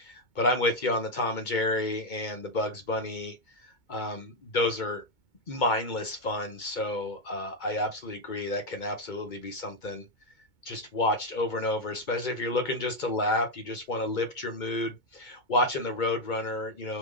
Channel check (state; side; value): late; right; 2.2 ms